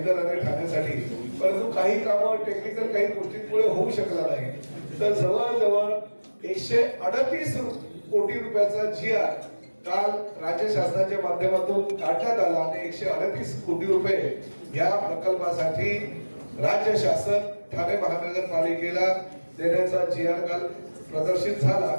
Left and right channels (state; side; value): inverted; both; correlation -1.00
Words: आणि ठाण्यासाठी. परंतु काही कामं टेक्निकल काही गोष्टींमुळे होऊ शकला नाही. तर जवळजवळ 138 कोटी रुपयाचा GR काल राज्य शासनाच्या माध्यमातून काढण्यात आला आणि 138 कोटी रुपये या प्रकल्पासाठी राज्य शासन ठाणे महानगरपालिकेला देण्याचा GR काल प्रदर्शित झाला.